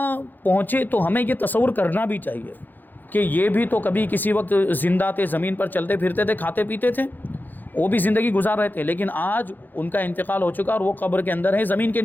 پہنچے تو ہمیں یہ تصور کرنا بھی چاہیے کہ یہ بھی تو کبھی کسی وقت زندہ تھے، زمین پر چلتے پھرتے تھے، کھاتے پیتے تھے، وہ بھی زندگی گزار رہے تھے، لیکن آج ان کا انتقال ہو چکا اور وہ قبر کے اندر ہے، زمین کے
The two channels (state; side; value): late; right; 0.088 ms